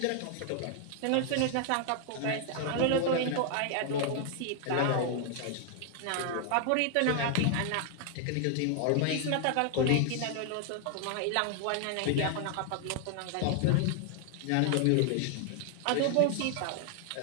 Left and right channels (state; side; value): different; both; correlation 0.00